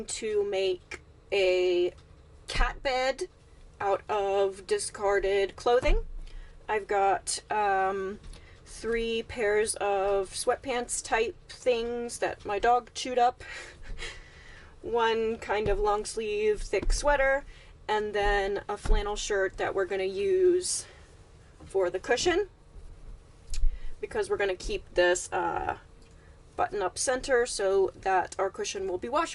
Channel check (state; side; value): identical; both; correlation 1.00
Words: to make a cat bed out of discarded clothing. I've got 3 pairs of sweatpants type things that my dog chewed up, one kind of long sleeve thick sweater, and then a flannel shirt that we're going to use for the cushion because we're going to keep this button up center so that our cushion will be